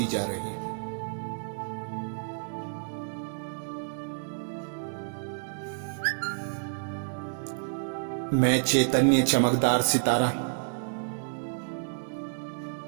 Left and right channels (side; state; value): left; silent; digital silence